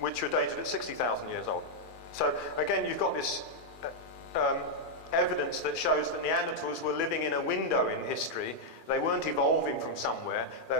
were dated at 60,000 years old. So again, you've got this evidence that shows that Neanderthals were living in a window in history. They weren't evolving from somewhere.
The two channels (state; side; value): late; right; 2.4 ms